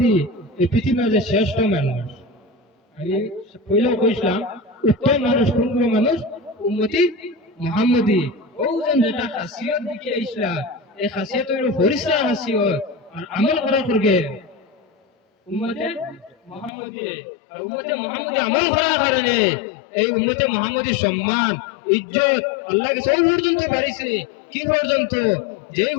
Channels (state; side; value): drops out; right; at 16.7 s